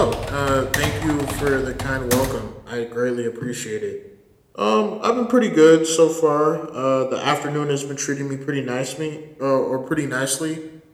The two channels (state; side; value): identical; both; correlation 1.00